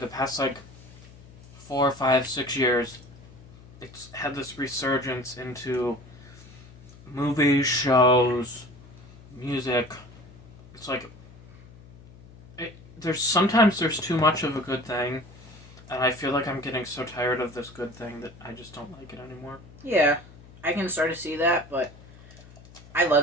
past, like, 4, 5, 6 years, it's had this resurgence into movies, shows, music. It's like, sometimes there's too much of a good thing, and I feel like I'm getting so tired of this good thing that I just don't like it anymore. Yeah, I can sort of see that, but I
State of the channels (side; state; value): left; noise; hum, 21 dB below the sound